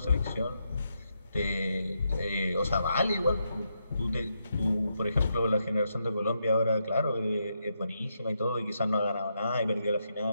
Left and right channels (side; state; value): both; inverted; correlation -0.82